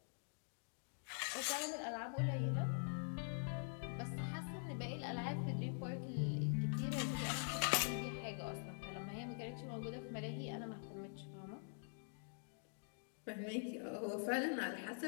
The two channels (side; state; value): right; silent; digital silence